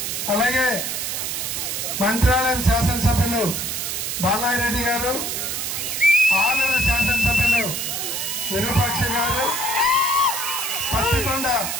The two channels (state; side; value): noise; right; hiss, 2 dB below the sound